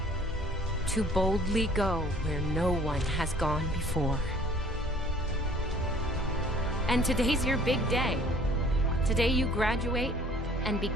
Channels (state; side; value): normal; both; correlation 0.54